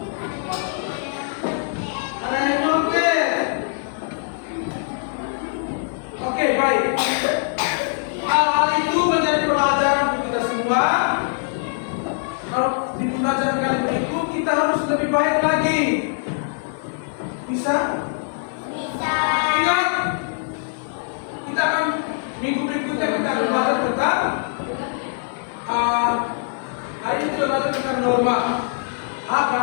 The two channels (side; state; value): right; silent; 58 dB below the other